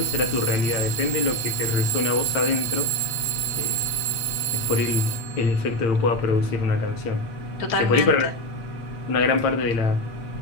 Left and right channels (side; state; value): right; late; 7.8 ms